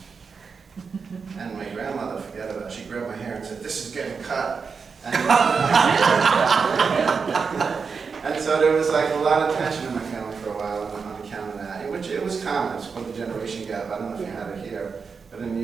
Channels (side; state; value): left; quieter; 5.4 dB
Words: And my grandmother, forget about it, she grabbed my hair and said, this is getting cut. And, and so there was like a lot of tension in my family for a while on account of that, which it was common. It's called the generation gap. I don't know if you had it here, but in